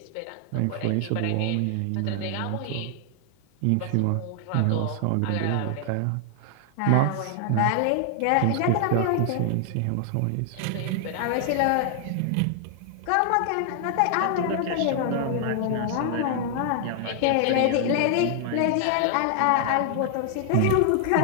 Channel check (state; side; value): different; both; correlation 0.00